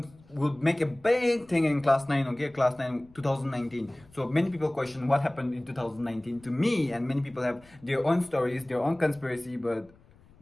make a big thing in class 9, okay? Class 9, 2019. So many people question what happened in 2019 to me, and many people have their own stories, their own conspiracy, but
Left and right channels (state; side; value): noise; left; rumble, 27 dB below the sound